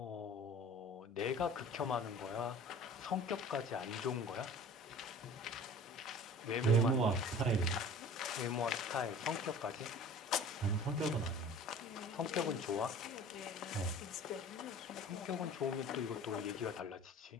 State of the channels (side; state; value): both; normal; correlation 0.43